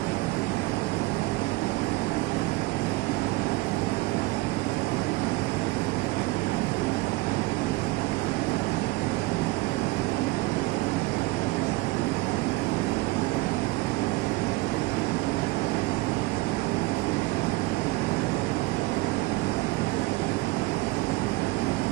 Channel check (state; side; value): quieter; left; 21.0 dB